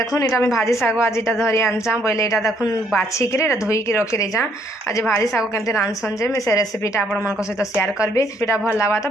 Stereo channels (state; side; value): normal; both; correlation 0.68